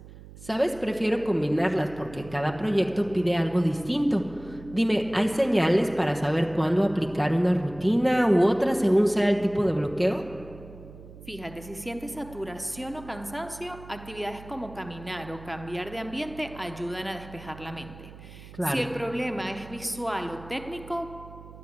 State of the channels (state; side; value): noise; right; hum, 17 dB below the sound